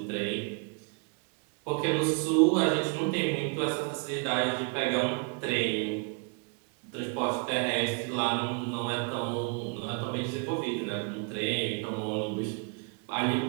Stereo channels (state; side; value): quieter; left; 34.4 dB